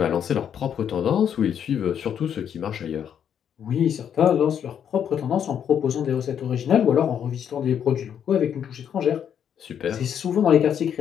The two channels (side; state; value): right; quieter; 8.7 dB